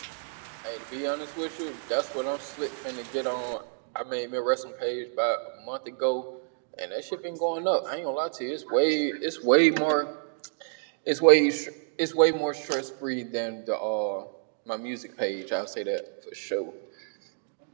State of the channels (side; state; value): left; silent; digital silence